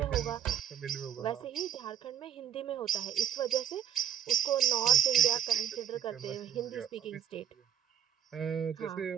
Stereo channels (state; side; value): quieter; left; 9.8 dB